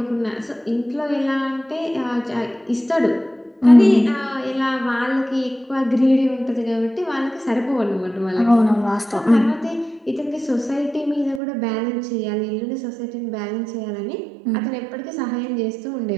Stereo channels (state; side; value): drops out; left; at 11.4 s